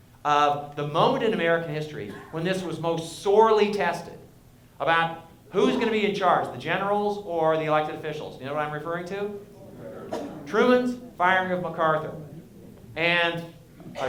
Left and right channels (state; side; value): identical; both; correlation 1.00